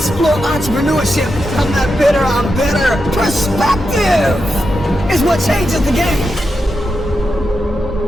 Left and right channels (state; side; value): normal; both; correlation 0.87